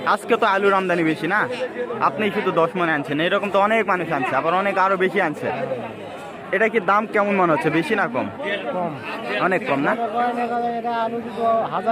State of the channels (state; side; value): identical; both; correlation 1.00